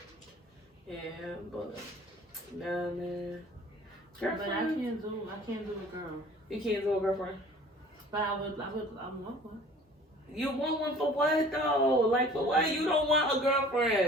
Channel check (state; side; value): normal; both; correlation 0.48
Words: Yeah, but nah, man. Girlfriend. But I can't do a girl. You can't do a girlfriend. But I want one. You want one for what though? Like for what? You don't want a